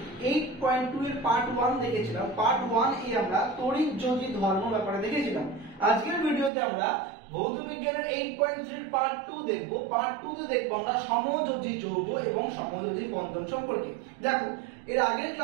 8.2 এর পার্ট 1 দেখেছিলাম। পার্ট 1 এ আমরা তড়িৎ-যোজী ধর্ম ব্যাপারে দেখেছিলাম। আজকের ভিডিওতে আমরা ভৌত বিজ্ঞানের 8.3 এর পার্ট 2 দেখব। পার্ট 2 তে দেখব আমরা সমযোজী যৌগ এবং সমযোজী বন্ধন সম্পর্কে। দেখো, এর আগের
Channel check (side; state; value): left; drops out; at 6.5 s